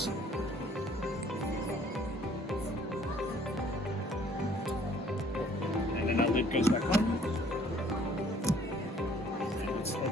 And then our lid goes back on. And let's head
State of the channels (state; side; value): normal; both; correlation 0.58